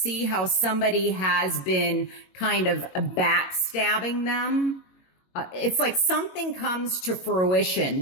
how somebody has been kind of backstabbing them. It's like something comes to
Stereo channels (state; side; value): late; right; 22 ms